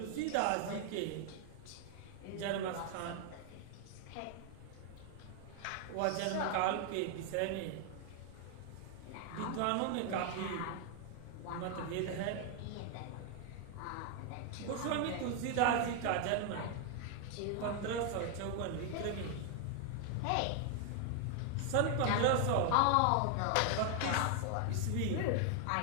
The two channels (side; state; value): both; different; correlation 0.00